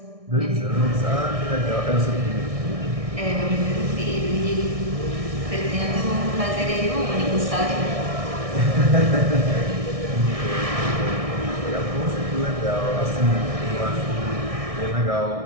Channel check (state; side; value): late; left; 1.6 ms